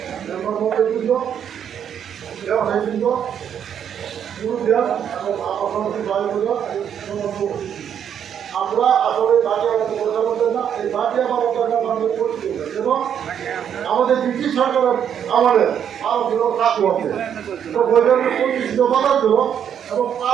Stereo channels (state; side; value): quieter; left; 8.7 dB